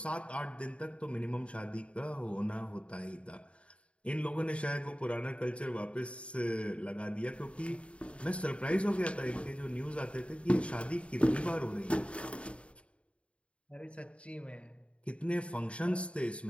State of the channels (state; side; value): late; right; 0.061 ms